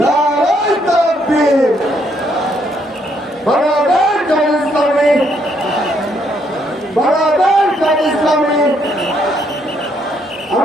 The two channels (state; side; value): normal; both; correlation 0.72